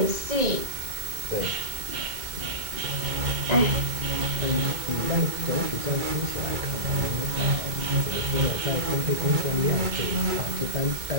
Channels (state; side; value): late; left; 2.2 ms